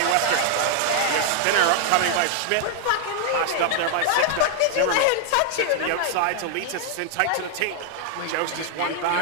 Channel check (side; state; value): both; different; correlation 0.00